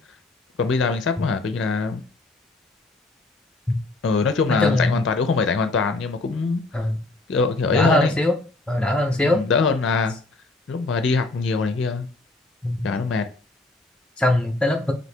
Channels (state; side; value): quieter; right; 3.1 dB